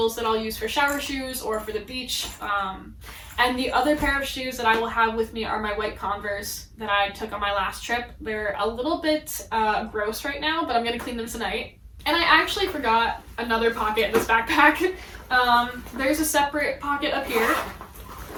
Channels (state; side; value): identical; both; correlation 1.00